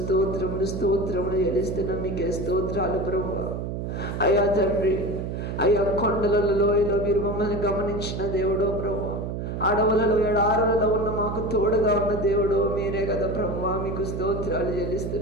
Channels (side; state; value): right; noise; hum, 4 dB below the sound